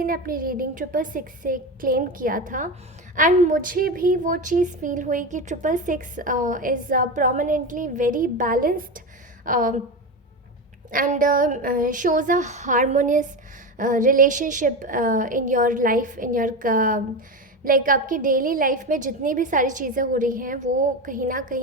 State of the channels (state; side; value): normal; both; correlation 0.19